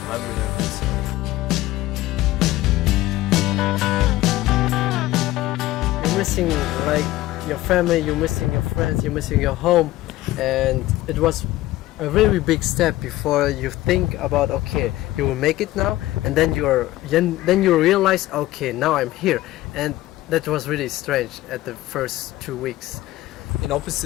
time we have. You're missing like your family, you're missing your friends, you're missing your home, and it was a very big step before you think about, okay, you will make it now, and then you realize, okay, now I'm here. And that was really strange at the first 2 weeks. In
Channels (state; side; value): quieter; right; 16.5 dB